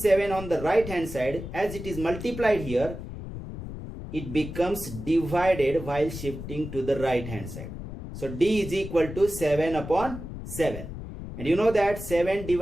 7 on the right hand side, as it is multiplied here, it becomes divided while shifting to the right hand side. So d is equal to 7 upon 7. And you know that 7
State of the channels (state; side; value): noise; left; rumble, 9 dB below the sound